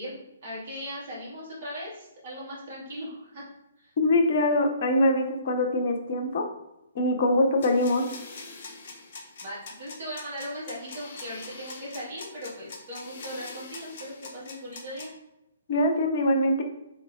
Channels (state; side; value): inverted; both; correlation -0.56